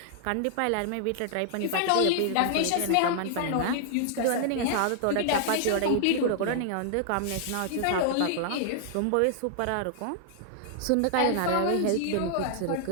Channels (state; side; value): different; both; correlation -0.01